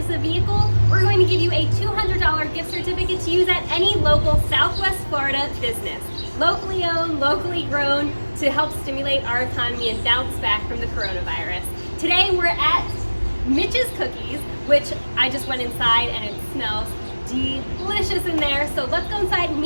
a vehicle, we're going to give you a $200 gift certificate to use at any local Southwest Florida business. Locally owned, locally grown, to help stimulate our economy and bounce back from the coronavirus. Today we're at Mitch's Cookies, which I just went inside and it smells delicious in there. So let's go inside and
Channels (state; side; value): inverted; both; correlation -1.00